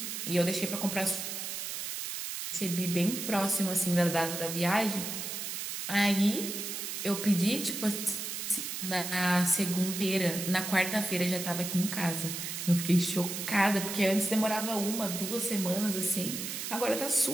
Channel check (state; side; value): noise; right; hiss, 5 dB below the sound